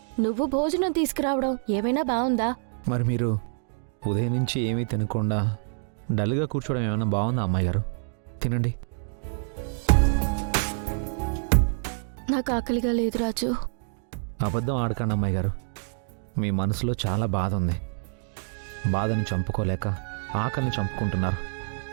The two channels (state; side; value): silent; left; digital silence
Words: నువ్వు భోజనం తీసుకురావడం ఏమైనా బాగుందా? మరి మీరు ఉదయం నుంచి ఏమీ తినకుండా డల్గా కూర్చోవడం ఏమైనా బాగుందా అమ్మాయి గారు? తినండి. నాకు ఆకలిగా లేదు రాజు. అబద్ధం ఆడకండి అమ్మాయి గారు. మీ మనసులో చాలా బాధ ఉంది. బాధని చంపుకోలేక ఆకలిని చంపుకుంటున్నారు,